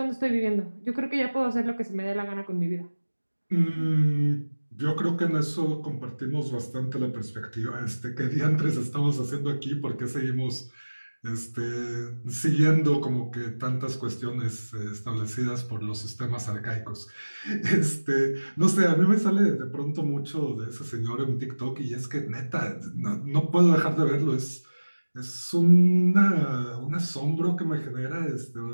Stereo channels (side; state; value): both; inverted; correlation -1.00